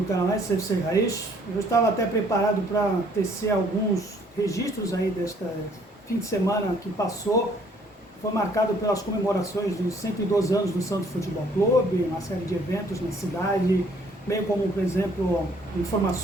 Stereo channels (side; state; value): both; normal; correlation 0.62